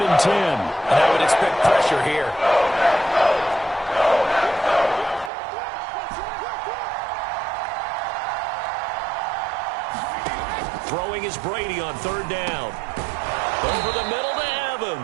and 10. And I would expect pressure here. Throwing is Brady on third down. Over the middle to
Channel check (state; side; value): drops out; left; at 5.3 s